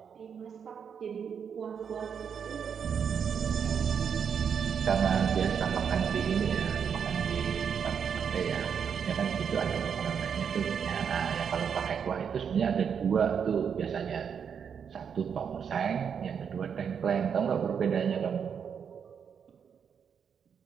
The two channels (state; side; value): quieter; left; 7.2 dB